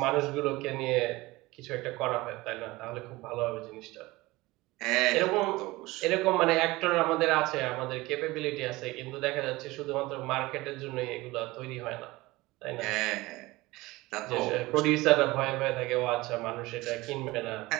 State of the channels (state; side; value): quieter; left; 20.5 dB